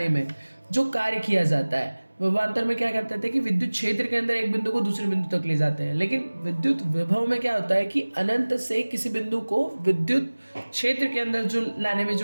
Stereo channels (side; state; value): both; inverted; correlation -1.00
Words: में जो कार्य किया जाता है, विभवांतर में क्या कहते थे कि विद्युत क्षेत्र के अंदर एक बिंदु को दूसरे बिंदु तक ले जाते हैं। लेकिन विद्युत विभव में क्या होता है कि अनंत से किसी बिंदु को विद्युत क्षेत्र के अंदर जो लाने में